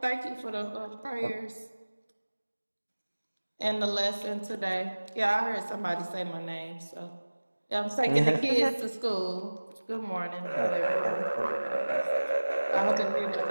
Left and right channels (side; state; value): both; inverted; correlation -1.00